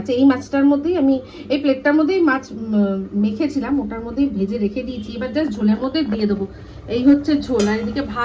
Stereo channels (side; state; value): both; identical; correlation 1.00